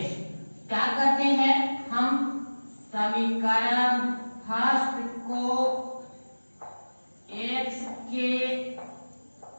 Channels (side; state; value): both; inverted; correlation -1.00